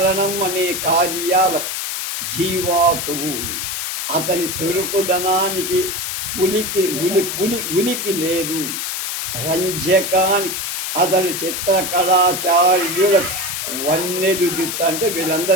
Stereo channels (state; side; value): noise; left; hiss, 3 dB below the sound